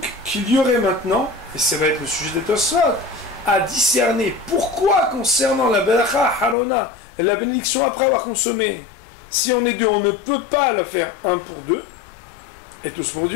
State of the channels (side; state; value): right; drops out; at 6.6 s